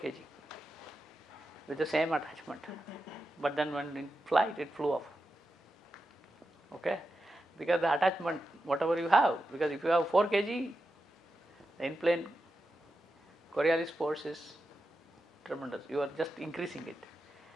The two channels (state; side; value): normal; both; correlation 0.89